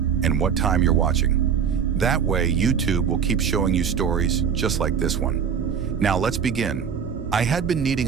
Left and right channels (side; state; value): left; quieter; 7.3 dB